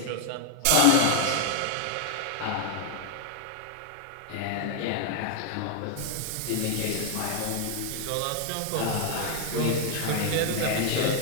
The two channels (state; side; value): different; both; correlation 0.00